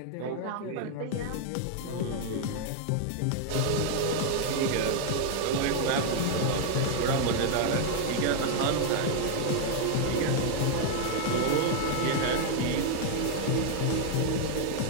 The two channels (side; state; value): both; different; correlation 0.00